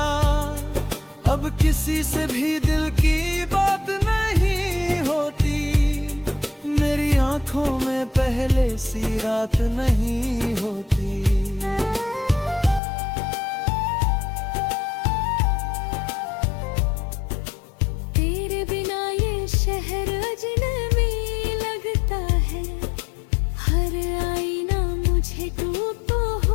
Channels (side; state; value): right; drops out; at 12.8 s